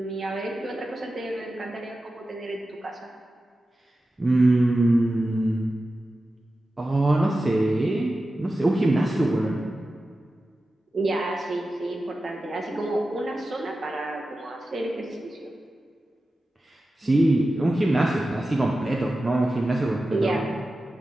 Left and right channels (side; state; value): both; normal; correlation 0.93